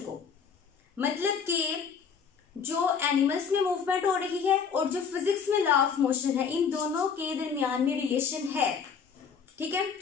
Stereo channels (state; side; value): quieter; right; 6.4 dB